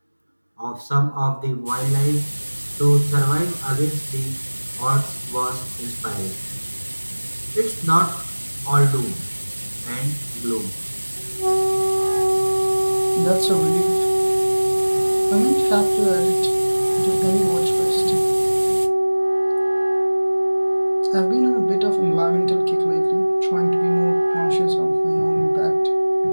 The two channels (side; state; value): both; inverted; correlation -1.00